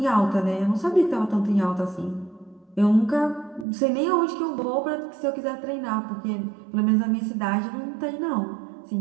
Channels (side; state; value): left; drops out; at 3.7 s